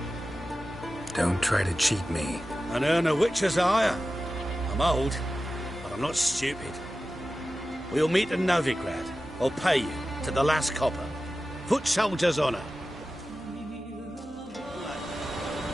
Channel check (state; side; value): normal; both; correlation 0.94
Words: Don't try to cheat me. An earn a witcher's hire. I'm old, but I'm not stupid. We'll meet in Novigrad. I'll pay you to the last copper. Foot soldier's honour.